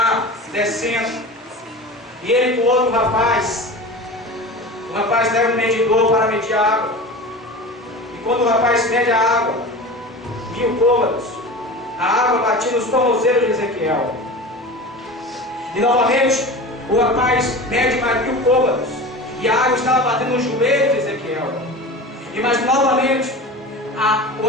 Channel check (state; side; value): normal; both; correlation 0.32